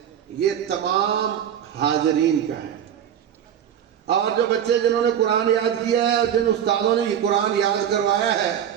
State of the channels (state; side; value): quieter; left; 9.5 dB